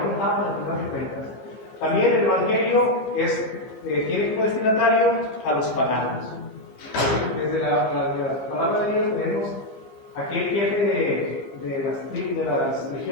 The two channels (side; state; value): right; late; 15 ms